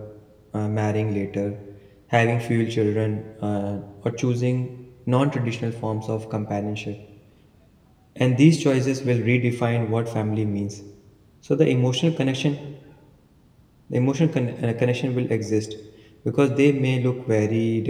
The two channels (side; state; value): both; identical; correlation 1.00